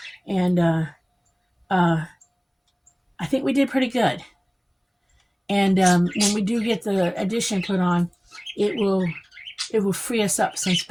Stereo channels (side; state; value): both; identical; correlation 1.00